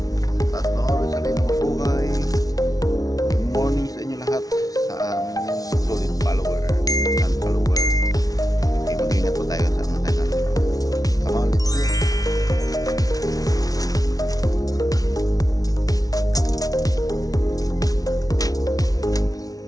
At noon, sa rin ng buhay. Good morning sa inyo lahat. Sa solid follower and follower. Okay, mag-ingat po tayo sa mga tayo. Come on, let's go.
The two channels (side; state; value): right; late; 0.18 ms